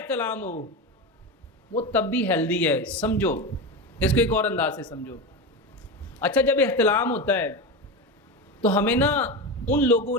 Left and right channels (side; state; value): both; normal; correlation 0.20